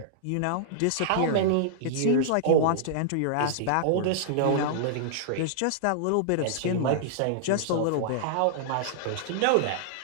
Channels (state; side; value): different; both; correlation -0.02